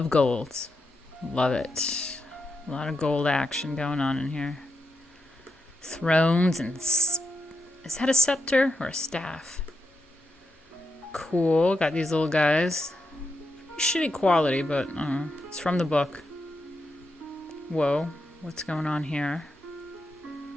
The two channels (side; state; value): both; normal; correlation 0.84